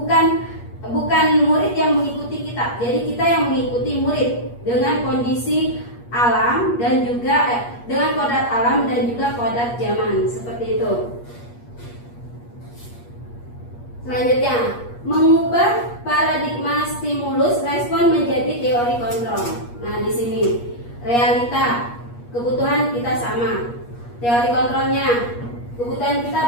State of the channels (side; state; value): right; late; 8.4 ms